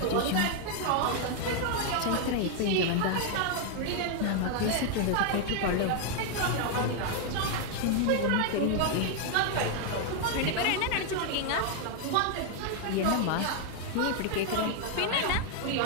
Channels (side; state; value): both; different; correlation 0.00